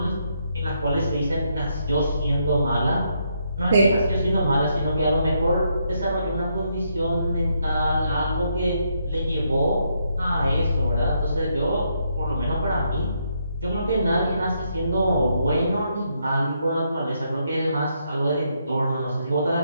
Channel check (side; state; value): both; inverted; correlation -0.77